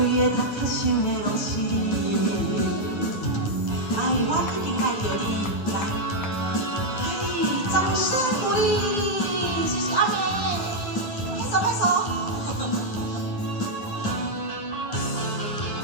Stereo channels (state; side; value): late; right; 9.7 ms